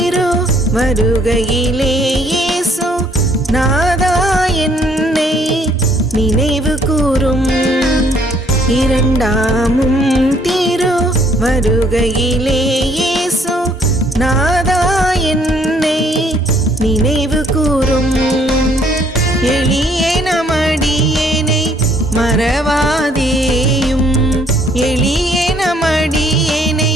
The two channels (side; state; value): both; normal; correlation 0.64